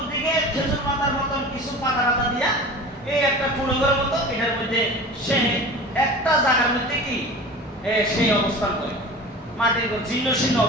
খেজুর পাতার মতন কিছু পাতা দিয়া এই একটা পুরোঘরের মতো, এটার মধ্যে সে একটা জায়গার মধ্যে কি সেই অবস্থান করে, মাটির জীর্ণ শীর্ণ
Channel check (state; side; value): normal; both; correlation 0.36